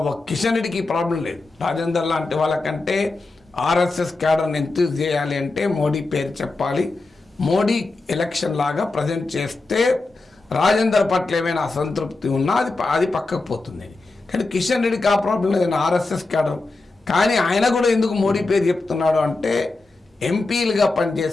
Kishan రెడ్డికి ఈ ప్రాబ్లం లేదు. రాజేందర్ లాంటి వాళ్ళకంటే ఆర్ఎస్ఎస్ క్యాడర్ని ఎంతూజ్ చేయాలి అంటే మోడీ పేరు చెప్పాలి. మోడీ ఎలక్షన్ లాగా ప్రజెంట్ చేస్తే రాజేందర్ పట్ల ఏమైనా అసంతృప్తి ఉన్నా అది పక్కకు పోతుంది. కానీ కిషన్ రెడ్డికి ఆ ప్రాబ్లం లేదు, ఆర్ఎస్ఎస్ క్యాడర్. కానీ ఆయన కూడా ఎందుకు మోడీ పేరు చెప్తున్నాడు అంటే ఎంపీలుగా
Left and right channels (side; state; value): right; quieter; 3.4 dB